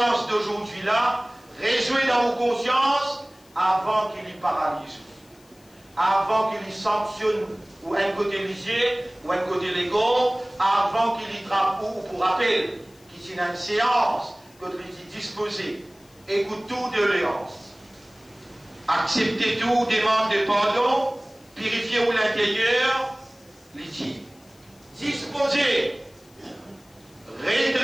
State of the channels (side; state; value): left; noise; hiss, 29 dB below the sound